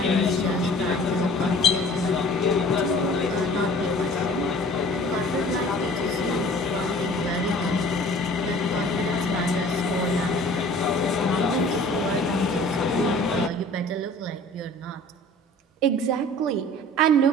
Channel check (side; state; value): both; normal; correlation 0.47